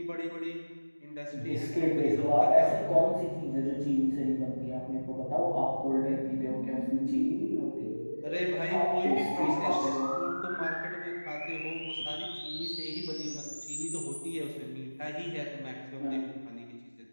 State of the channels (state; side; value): inverted; both; correlation -1.00